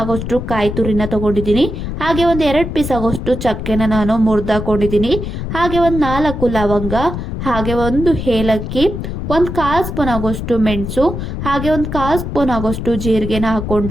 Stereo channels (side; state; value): left; noise; rumble, 5 dB below the sound